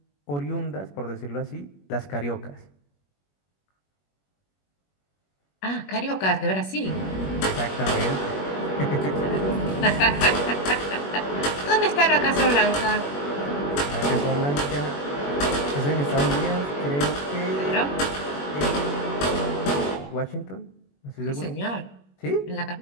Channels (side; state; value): right; late; 21 ms